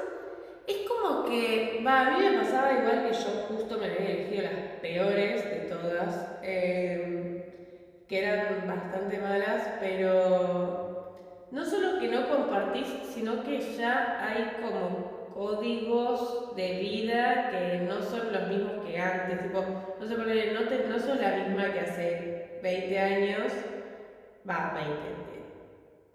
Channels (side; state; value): both; identical; correlation 1.00